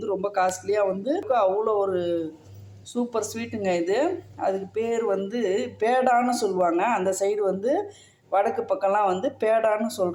ரொம்ப காஸ்ட்லியாக வந்து அவ்வளோ ஒரு சூப்பர் ஸ்வீட்டுங்க இது. அதுக்கு பேர் வந்து பேடான்னு சொல்லுவாங்க. அந்த சைடு வந்து வடக்கு பக்கம்லாம் வந்து பேடான்னு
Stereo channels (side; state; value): both; identical; correlation 1.00